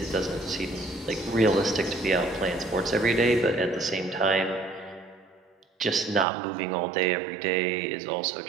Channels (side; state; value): left; drops out; at 6.2 s